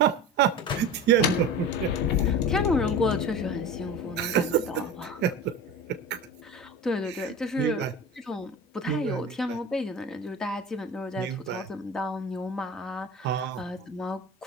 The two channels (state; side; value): normal; both; correlation 0.32